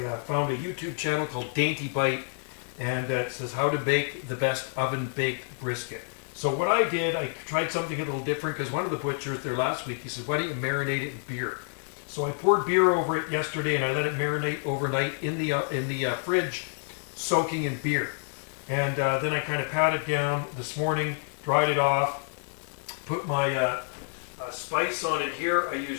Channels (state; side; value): silent; right; 59 dB below the other